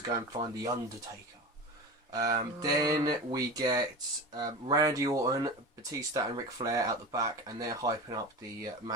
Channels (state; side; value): normal; both; correlation 0.29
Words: go and find The Undertaker. Then we get Randy Orton, Batista and Ric Flair out the back, and they're hyping up the